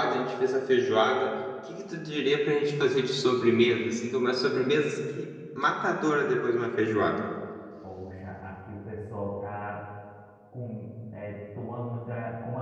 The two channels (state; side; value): identical; both; correlation 1.00